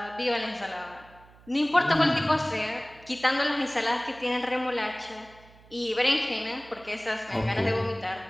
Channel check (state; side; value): noise; right; hum, 25 dB below the sound